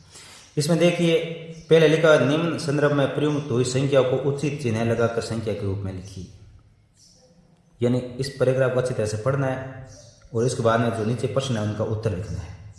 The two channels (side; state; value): both; identical; correlation 1.00